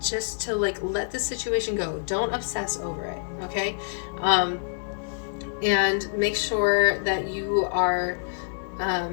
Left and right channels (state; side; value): silent; right; 61 dB below the other